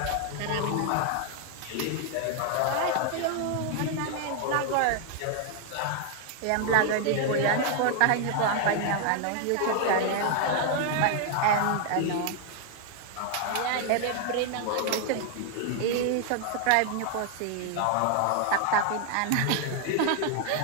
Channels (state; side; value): different; both; correlation 0.00